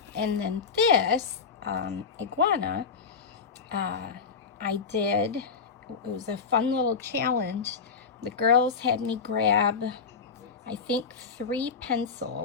And then this iguana, I did, it was a fun little challenge. The girls had me grab, I think, 3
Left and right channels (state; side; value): quieter; right; 5.5 dB